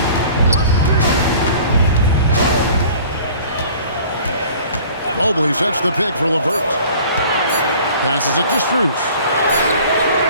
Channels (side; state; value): both; inverted; correlation -0.48